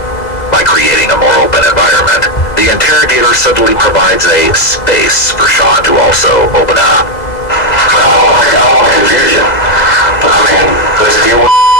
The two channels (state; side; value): late; right; 2.0 ms